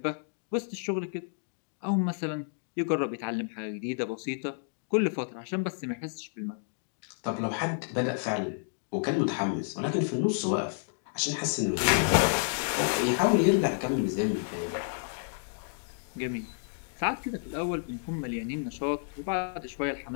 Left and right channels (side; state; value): right; silent; digital silence